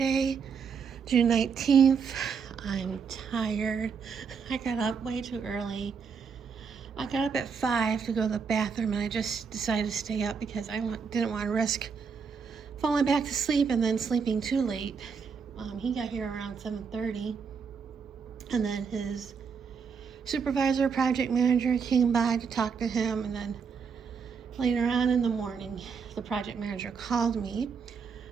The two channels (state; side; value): quieter; left; 6.0 dB